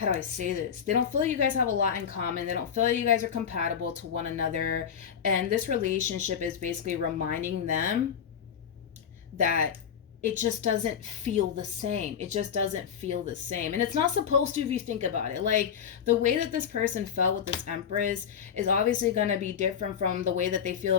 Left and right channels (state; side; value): quieter; right; 7.8 dB